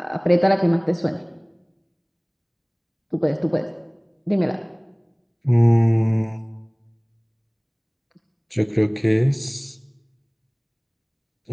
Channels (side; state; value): both; identical; correlation 1.00